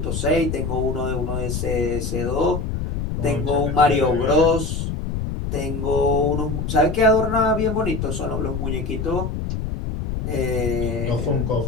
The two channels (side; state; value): left; noise; rumble, 3 dB below the sound